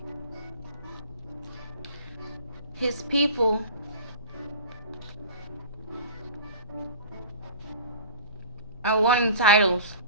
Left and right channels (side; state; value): both; inverted; correlation -0.38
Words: His people are wanting titles.